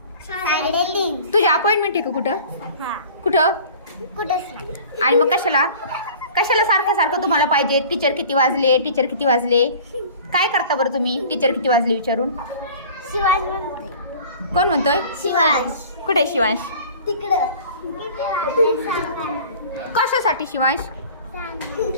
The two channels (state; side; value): inverted; both; correlation -0.44